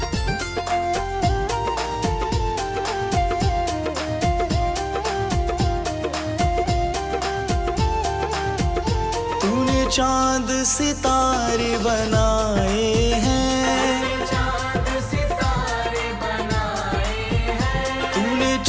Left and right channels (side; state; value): both; identical; correlation 1.00